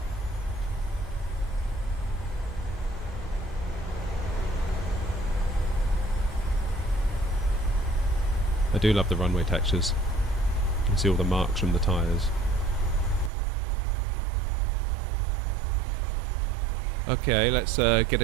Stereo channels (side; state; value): left; drops out; at 13.3 s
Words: I do love the runway textures. You can see all the marks from the tyres. Okay, let's get